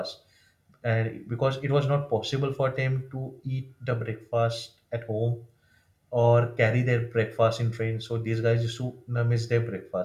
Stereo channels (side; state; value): both; identical; correlation 1.00